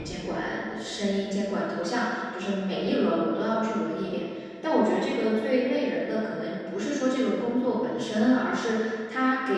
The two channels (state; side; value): identical; both; correlation 1.00